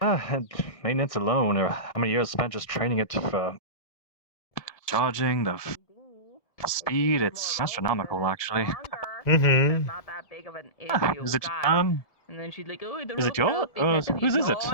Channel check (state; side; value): late; right; 1.7 ms